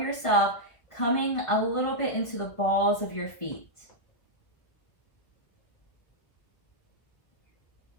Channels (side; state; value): right; late; 1.6 ms